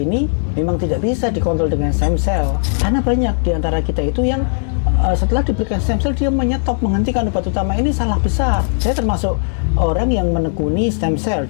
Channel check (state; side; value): silent; right; digital silence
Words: memang tidak bisa dikontrol dengan stem cell, karena banyak di antara kita itu yang setelah diberikan stem cell dia menyetop, menghentikan obat utama. Ini salah besar. Saya termasuk orang yang menekuni stem cell